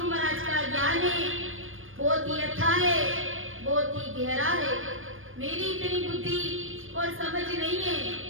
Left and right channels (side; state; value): left; late; 0.59 ms